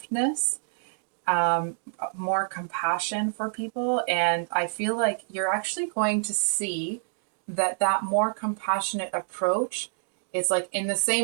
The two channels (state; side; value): silent; left; digital silence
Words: more compassion for people. And I feel like you're actually going to see that more compassionate approach, it's like in the